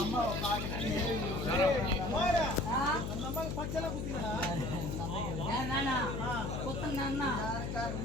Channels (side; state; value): left; noise; hum, 3 dB below the sound